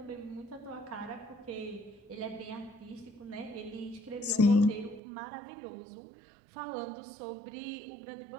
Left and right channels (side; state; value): left; drops out; at 5.0 s